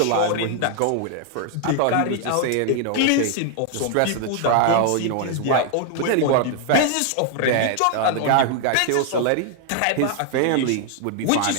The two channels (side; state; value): both; different; correlation 0.00